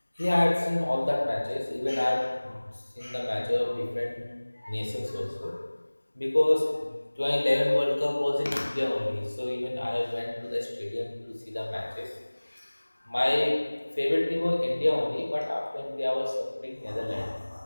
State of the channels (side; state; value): both; inverted; correlation -1.00